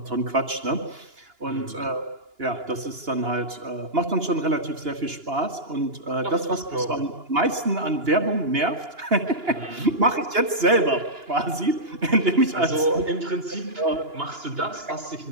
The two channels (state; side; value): late; left; 2.9 ms